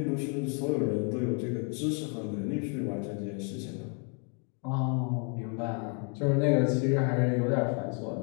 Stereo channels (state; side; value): quieter; right; 39.2 dB